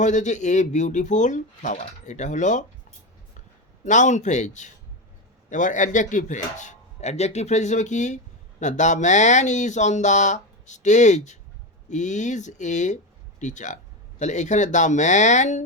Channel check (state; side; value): normal; both; correlation 0.15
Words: হচ্ছে? এ বিউটিফুল ফ্লাওয়ার, এটা হলো নাউন ফ্রেজ। এবার অ্যাডজেক্টিভ ফ্রেজ। অ্যাডজেক্টিভ ফ্রেজ হিসেবে কি না, the man is on the stage is a teacher. তাহলে এখানে the man